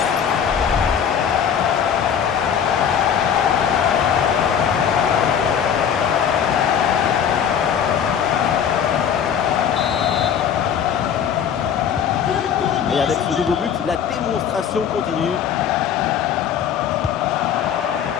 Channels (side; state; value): right; quieter; 8.2 dB